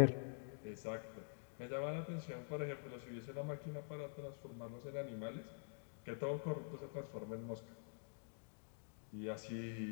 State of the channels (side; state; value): right; silent; digital silence